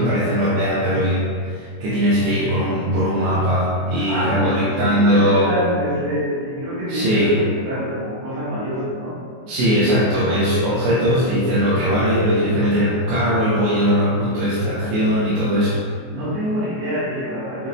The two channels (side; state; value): left; late; 24 ms